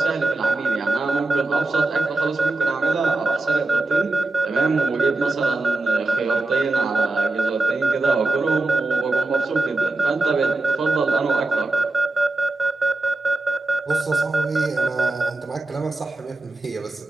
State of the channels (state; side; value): quieter; left; 3.0 dB